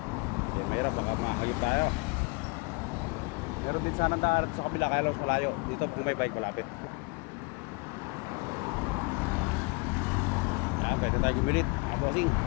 Kasi mahirap, baka makakayot tayo. Meron din sana daan sa kabila, kaya lang malayo. Dito kung may bike malapit. Yan, pwede tayo gumilit mga bossing.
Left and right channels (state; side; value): quieter; right; 29.9 dB